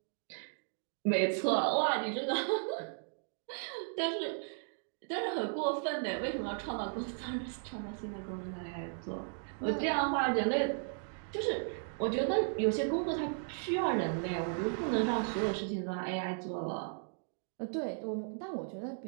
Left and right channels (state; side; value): silent; left; digital silence